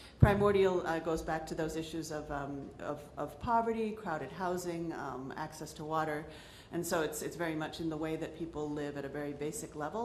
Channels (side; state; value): both; identical; correlation 1.00